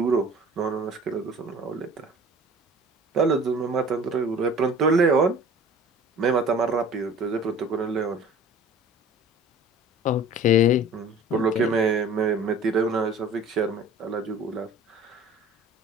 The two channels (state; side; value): normal; both; correlation 0.44